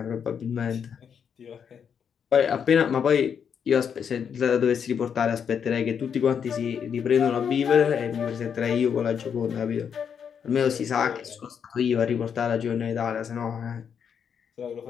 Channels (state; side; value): quieter; right; 7.4 dB